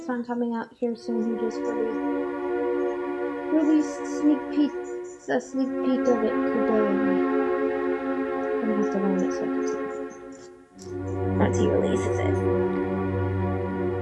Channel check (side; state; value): both; identical; correlation 1.00